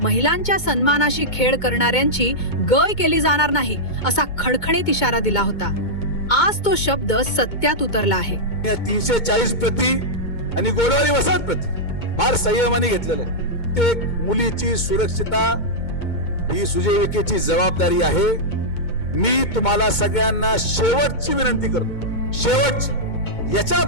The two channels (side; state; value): right; late; 2.2 ms